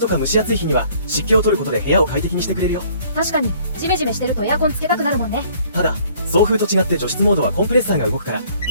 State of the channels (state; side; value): inverted; both; correlation -0.58